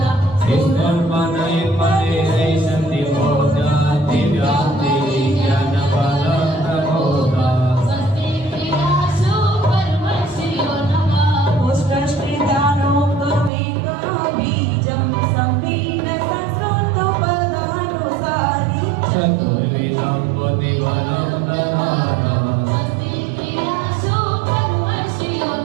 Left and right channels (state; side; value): drops out; left; at 13.5 s